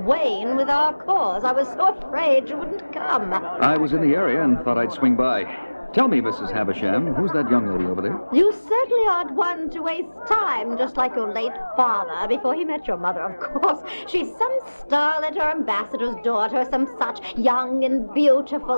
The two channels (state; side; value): inverted; both; correlation -1.00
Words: Wayne with our cause. I was so afraid you wouldn't come. I was in the area and thought I'd swing by. Tell me, Mrs. Havisham, who's that young lady over there? You certainly aren't one to waste time, just like your late father, before he met your mother, of course. She's some starlet or ambassador's daughter, some such, young and